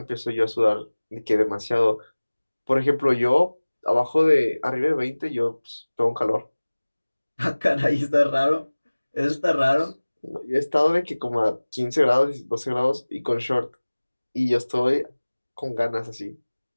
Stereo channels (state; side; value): inverted; both; correlation -1.00